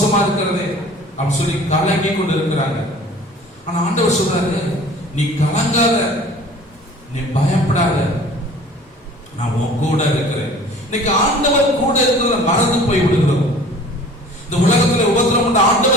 இருக்கிறதே அப்படின்னு சொல்லி கலங்கி கொண்டு இருக்கிறாங்க. ஆனா ஆண்டவர் சொல்றாரு, நீ கலங்காத, நீ பயப்படாத, நான் உன் கூட இருக்கிறேன். இன்னைக்கு ஆண்டவர் கூட இருக்கிறத மறந்து போய் விடுகிறோம். இந்த உலகத்துல உபத்திரவம்,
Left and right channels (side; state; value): both; normal; correlation 0.46